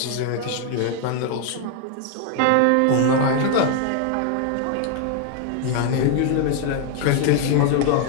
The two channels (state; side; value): different; both; correlation 0.00